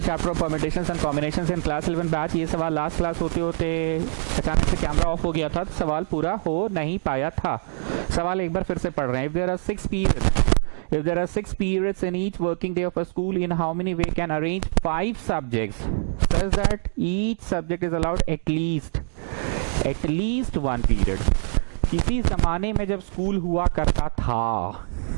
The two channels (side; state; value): left; silent; digital silence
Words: chapter of permutations and combinations in class 11 batch. ये सवाल last class होते होते अचानक से कैमरा ऑफ हो गया था, तो सवाल पूरा हो नहीं पाया था। सवाल एक बार फिर से पढ़ रहे हैं। If there are 6 periods in each working day of a school, in how many way can arrange 5 subjects such that each subject is allowed at least 1 period। किसी जमाने में जब स्कूल हुआ करता था,